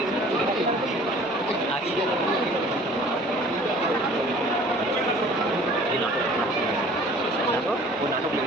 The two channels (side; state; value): both; normal; correlation 0.50